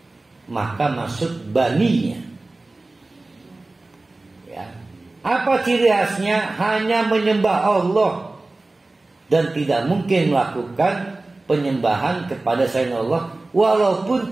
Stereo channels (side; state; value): left; quieter; 3.1 dB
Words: maka masuk baninya. Ya. Apa ciri khasnya? Hanya menyembah Allah dan tidak mungkin melakukan penyembahan kepada selain Allah, walaupun